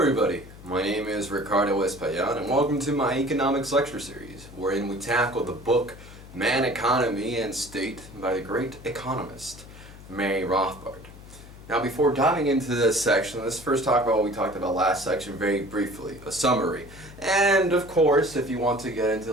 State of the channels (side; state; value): left; noise; hum, 18 dB below the sound